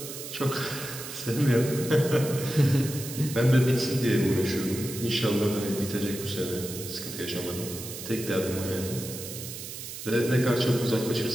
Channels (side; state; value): right; noise; hiss, 10 dB below the sound